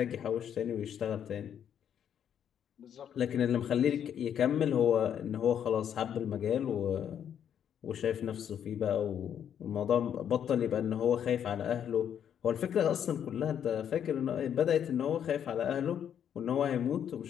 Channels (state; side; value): quieter; right; 9.0 dB